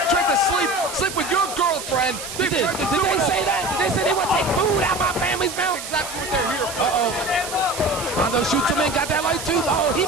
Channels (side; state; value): right; noise; hiss, 9 dB below the sound